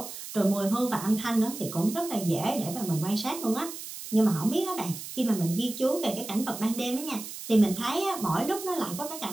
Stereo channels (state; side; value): noise; right; hiss, 10 dB below the sound